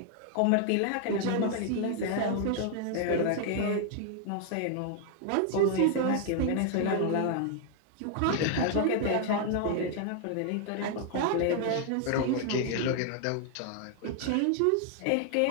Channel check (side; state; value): both; different; correlation 0.00